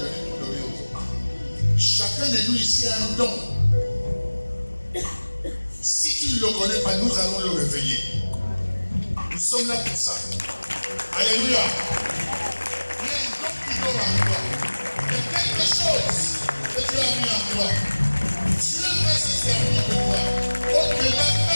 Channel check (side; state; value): both; inverted; correlation -1.00